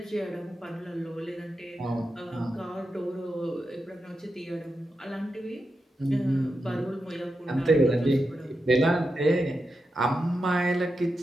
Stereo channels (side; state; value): both; normal; correlation 0.88